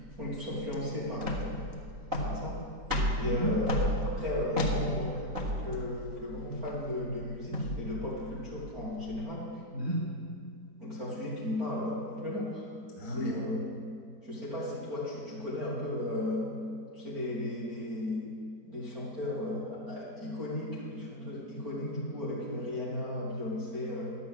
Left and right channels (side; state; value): left; late; 3.9 ms